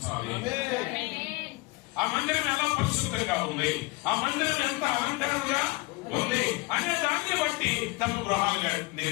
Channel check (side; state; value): right; quieter; 24.1 dB